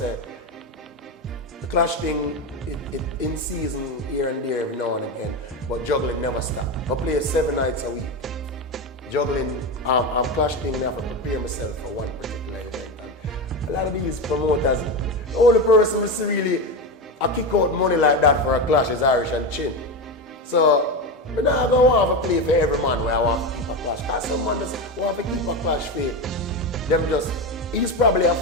the clash thing, it in season here and there every now and again, but juggling never stop. I play 7 nights a week. Juggling, clash thing, I have to prepare myself for one particular event. And a lot of these promoters, the only person who really kick out money like that for a clash is Irishandchin. So, I'm not going to want to play for every man where I want to keep a clash. Because some man just want to keep a clash for them just, he's probably a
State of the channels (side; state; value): both; normal; correlation 0.17